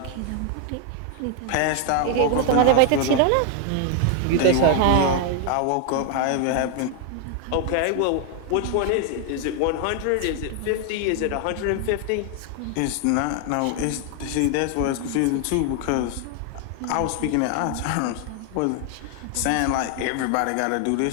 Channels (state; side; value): different; both; correlation 0.00